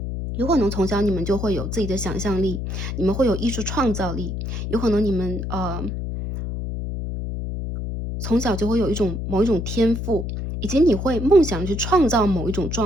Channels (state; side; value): noise; left; hum, 4 dB below the sound